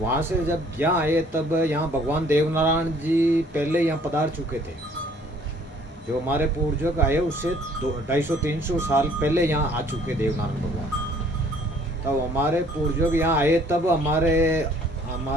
से जब यहाँ आए तब यहाँ भगवान देवनारायण जी पहले यहाँ पधार चुके थे। जो हमारे पूर्वज आए उससे 250-300 साल पहले यहाँ आ चुके देवनारायण भगवान। तब हमारे पूर्वज यहाँ आए तब हमारे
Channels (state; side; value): normal; both; correlation 0.58